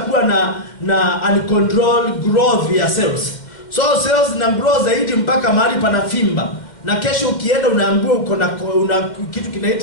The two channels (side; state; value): right; late; 2.1 ms